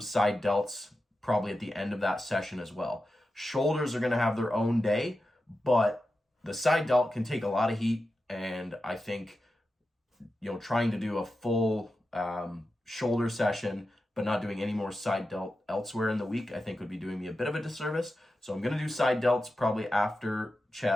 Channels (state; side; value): normal; both; correlation 0.91